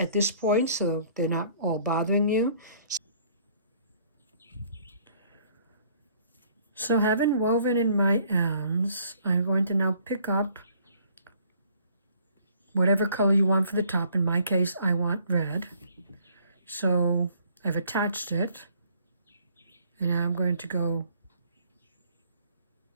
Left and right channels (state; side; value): inverted; both; correlation -0.60